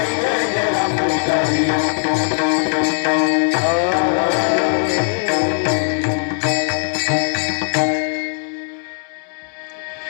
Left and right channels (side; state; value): right; silent; 67 dB below the other